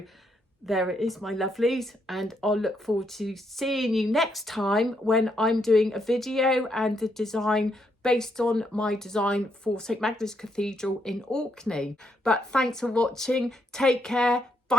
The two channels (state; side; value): normal; both; correlation 0.76